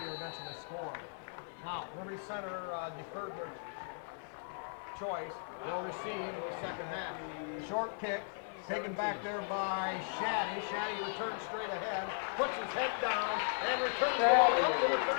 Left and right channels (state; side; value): silent; right; 53 dB below the other